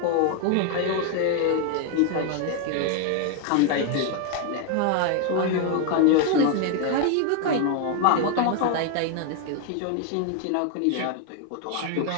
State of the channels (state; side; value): different; both; correlation 0.00